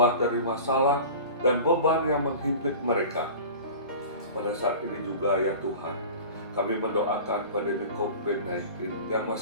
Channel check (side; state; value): both; inverted; correlation -0.38